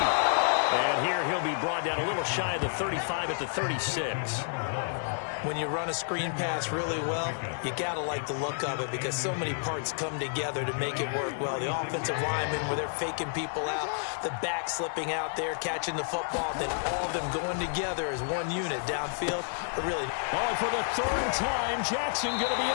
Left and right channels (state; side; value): silent; right; digital silence